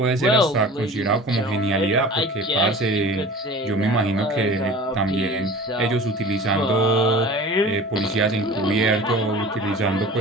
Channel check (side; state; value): both; normal; correlation 0.40